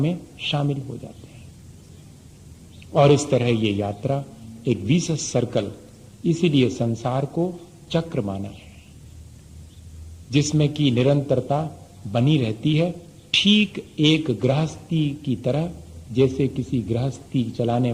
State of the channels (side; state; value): both; identical; correlation 1.00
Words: शामिल हो जाते हैं। और इस तरह ये यात्रा एक विशेष सर्कल, इसीलिए संसार को चक्र माना है, जिसमें की निरंतरता बनी रहती है, ठीक एक गृहस्थी की तरह। जैसे किसी गृहस्थी चलाने